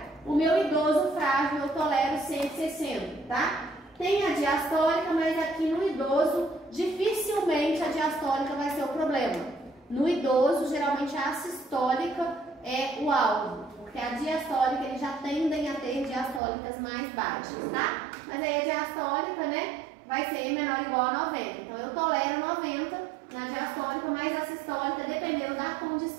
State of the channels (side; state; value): left; drops out; at 16.4 s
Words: O meu idoso frágil eu tolero 160, tá? Tem a diastólica, mas aqui no idoso, dificilmente a diastólica vai ser o problema. No idoso, geralmente a sistólica é o alvo, porque a diastólica, eles já tendem a ter diastólicas mais baixas, tá? Mas aí a diastólica, né, vai ser menor ou igual a 90. Então, eu tolero 90 na diastólica, mas a sistólica, dependendo da